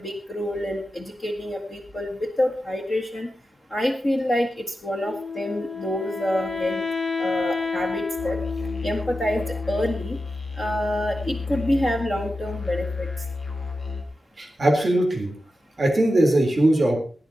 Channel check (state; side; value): normal; both; correlation 0.91